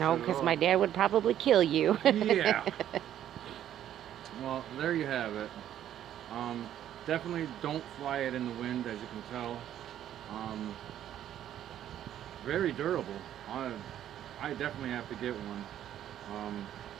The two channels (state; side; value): quieter; left; 11.1 dB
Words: because my dad would probably kill you. Yeah. Well, there you have it. Definitely don't fly it in the wind, as you can tell. Very durable. I definitely have to get one.